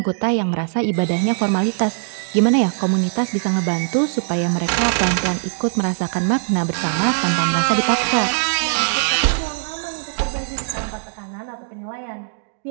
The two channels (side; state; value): left; silent; digital silence